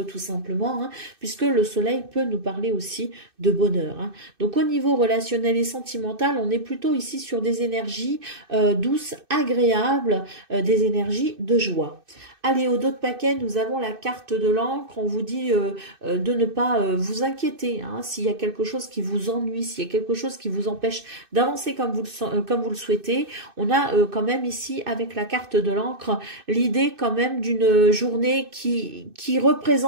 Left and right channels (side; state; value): left; late; 2.6 ms